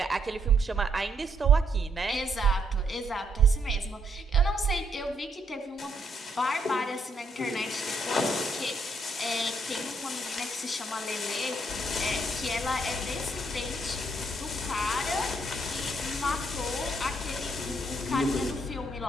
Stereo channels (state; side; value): normal; both; correlation 0.73